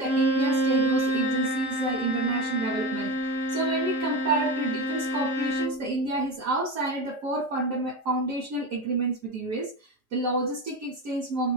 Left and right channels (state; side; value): normal; both; correlation 0.22